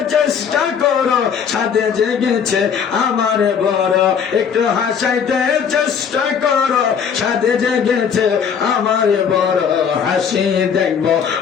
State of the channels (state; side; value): quieter; right; 7.1 dB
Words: চেষ্টা করো, সাথে জেগেছে আমার বড়, একটু হাসাইতে চেষ্টা করো, সাথে জেগেছে আমার বড়। হাসি দেখবো